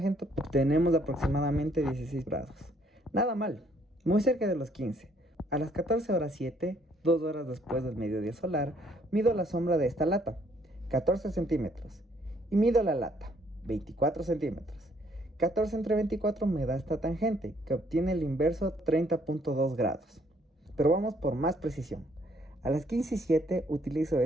obtenemos aproximadamente 16 grados. Nada mal, muy cerca de los 15. A las 14:07, 2 horas después del mediodía solar, mido la sombra de esta lata, 14 centímetros. Y mido la lata, 24 centímetros. 14 entre 24 me da esta tangente, que obtiene el inverso 30.2 grados. Pero vamos por más precisión. A las 15:07 utilizo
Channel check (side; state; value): both; normal; correlation 0.66